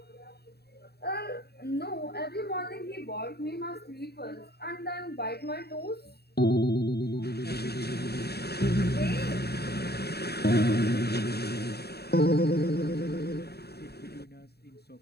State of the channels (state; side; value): late; right; 0.47 ms